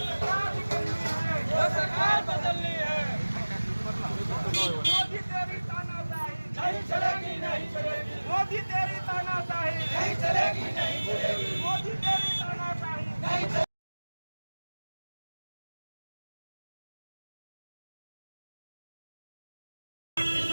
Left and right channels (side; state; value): both; inverted; correlation -1.00